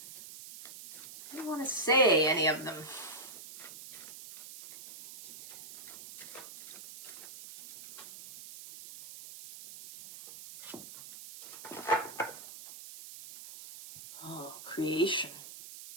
didn't want to say any of them. Creation.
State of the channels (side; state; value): right; noise; hiss, 14 dB below the sound